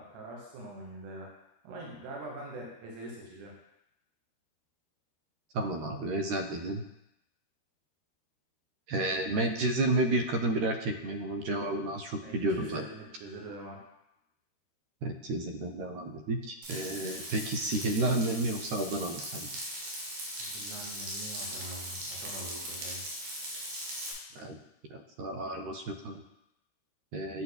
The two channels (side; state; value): left; late; 13 ms